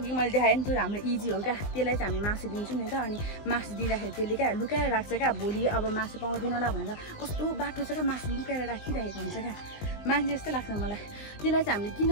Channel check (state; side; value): late; right; 19 ms